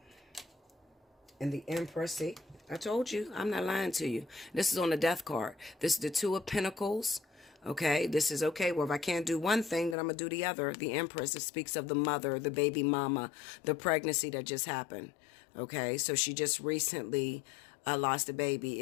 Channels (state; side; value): drops out; right; at 10.0 s